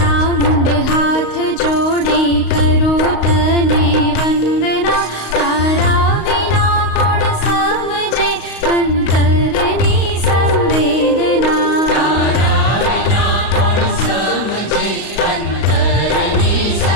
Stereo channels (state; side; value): late; right; 35 ms